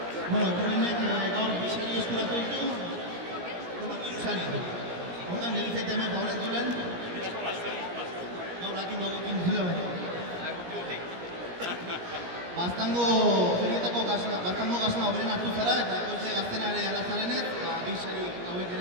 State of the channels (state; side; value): late; left; 17 ms